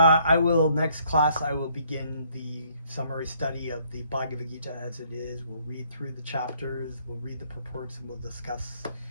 next class I will begin the summary study of the Bhagavad Gita as it is. We'll read through the chapters, we'll read the purports, and we'll discuss.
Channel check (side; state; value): both; inverted; correlation -0.66